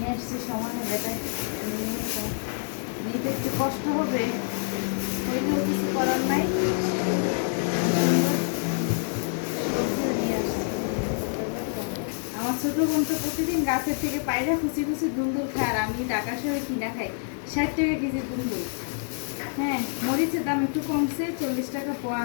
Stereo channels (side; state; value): right; silent; 60 dB below the other